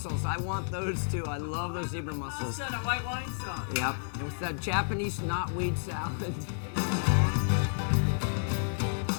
I want those too. I love those zebra mussels. Instead of white wine sauce. Yep, and with that Japanese knotweed salad.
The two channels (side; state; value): right; silent; digital silence